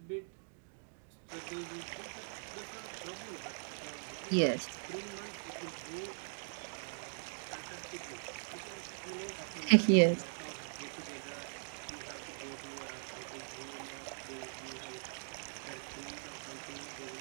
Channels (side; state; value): left; silent; digital silence